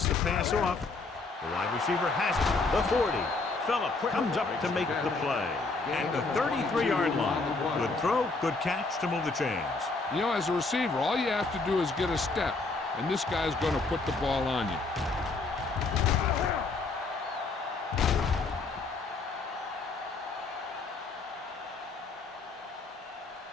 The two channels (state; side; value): quieter; right; 3.7 dB